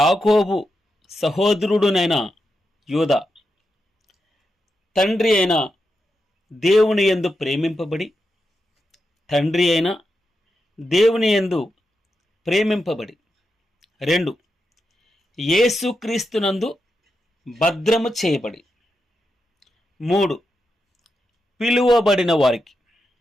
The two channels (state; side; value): normal; both; correlation 0.87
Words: సహోదరుడునైన యూదా తండ్రి అయిన దేవుని యందు ప్రేమింపబడి దేవుని యందు ప్రేమింపబడి 2 యేసుక్రీస్తునందు భద్రము చేయబడి 3 పిలువబడిన వారికి